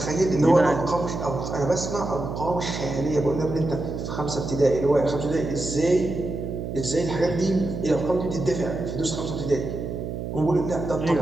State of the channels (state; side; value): noise; right; hum, 5 dB below the sound